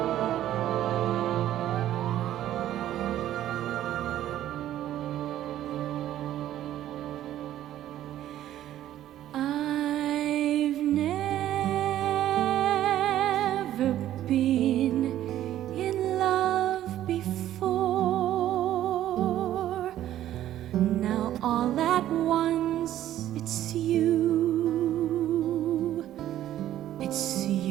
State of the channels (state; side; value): quieter; left; 12.6 dB